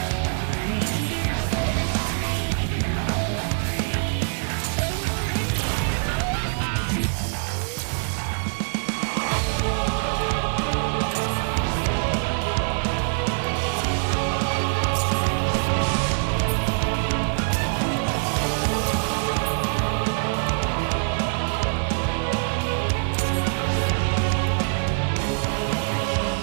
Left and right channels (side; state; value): left; silent; digital silence